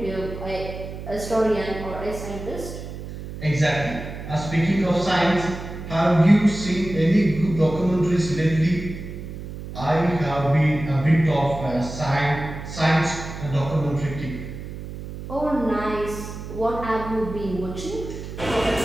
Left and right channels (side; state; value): right; noise; hum, 10 dB below the sound